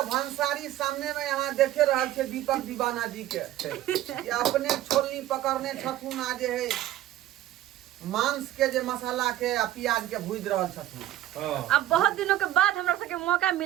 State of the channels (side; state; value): left; quieter; 13.8 dB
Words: भंसारी सामने में यहाँ देखे रहल छे दीपक दीवाना जी के ये अपने छोलनी पकड़ने छथुन। आ जे है मांस के जे मसाला के आ प्याज के भूज रहल छथुन। हां अब बहुत दिनों के बाद हमरा सबके मौका